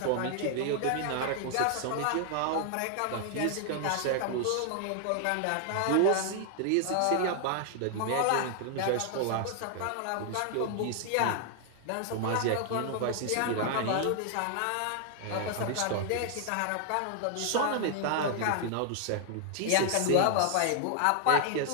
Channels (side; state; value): both; different; correlation 0.00